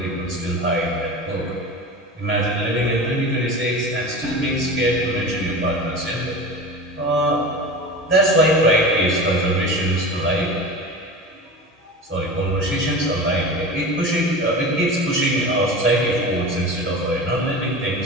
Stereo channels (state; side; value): normal; both; correlation 0.31